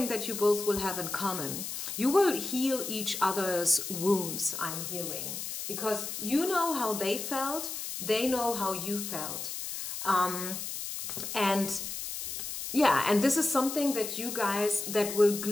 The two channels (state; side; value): noise; left; hiss, 6 dB below the sound